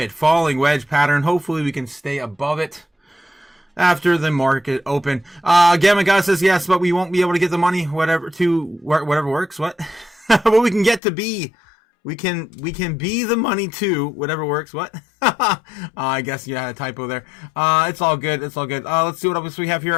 falling wedge pattern. Hopefully we can stay above it after the market open. Gamma God says yes, but we won't be able to get the money, whatever works. What? But we can get to be. We can be the money too, whatever works. What? I guess you had a typo there. It's all good. Let's see what else we have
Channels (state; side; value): drops out; right; at 11.0 s